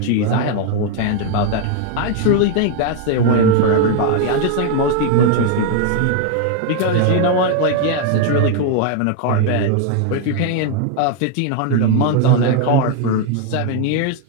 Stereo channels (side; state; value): both; different; correlation 0.00